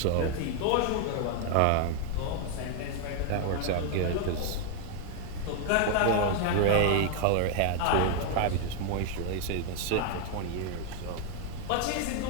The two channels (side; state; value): both; different; correlation 0.00